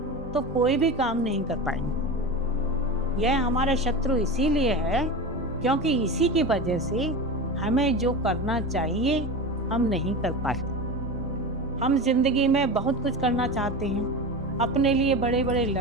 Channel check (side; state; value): both; normal; correlation 0.25